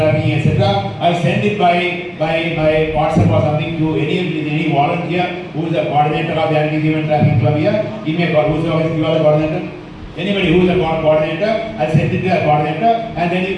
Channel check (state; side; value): identical; both; correlation 1.00